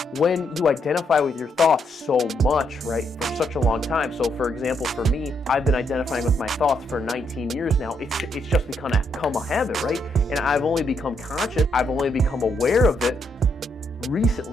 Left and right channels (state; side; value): normal; both; correlation 0.76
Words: when you identify with your thoughts so much, right, for such a long time. So for example, for me, I've been identifying with my thoughts for 19 years now. It's just become a habit, right? And I've only become conscious, I've only become aware of it